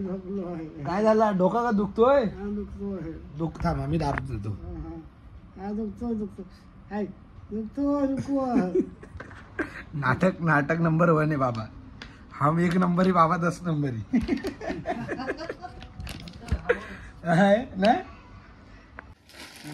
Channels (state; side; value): identical; both; correlation 1.00